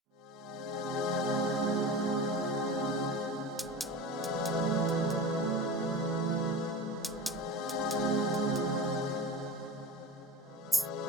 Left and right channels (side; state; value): both; normal; correlation 0.31